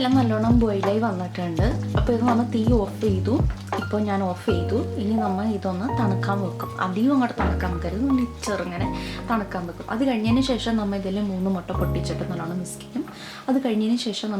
നല്ലോണം ബോയിലായി വന്നിട്ടുണ്ട്. അപ്പോൾ ഇത് നമ്മൾ തീ ഓഫ് ചെയ്തു. ഇപ്പോൾ ഞാൻ ഓഫ് ചെയ്തു. ഇനി നമ്മൾ ഇതൊന്ന് തണുക്കാൻ വെക്കും. അധികം അങ്ങോട്ട് തണുക്കാൻ വെക്കരുത്, ഒന്ന് ചെറുങ്ങനെ തണുക്കാൻ വെക്കും. അത് കഴിഞ്ഞതിന് ശേഷം നമ്മൾ ഇതിൽ 3 മുട്ട പൊട്ടിച്ചിട്ട് നല്ലോണം മിക്സ് ചെയ്യും. അത് കഴിഞ്ഞതിന് ശേഷം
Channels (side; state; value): both; identical; correlation 1.00